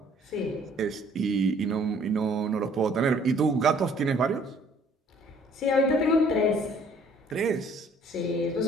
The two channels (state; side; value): normal; both; correlation 0.59